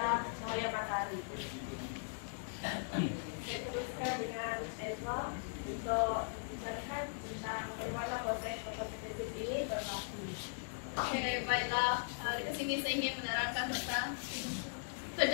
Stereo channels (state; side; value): silent; right; digital silence